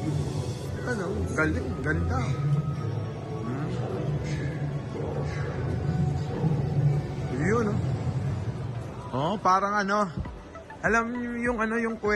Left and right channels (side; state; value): both; identical; correlation 1.00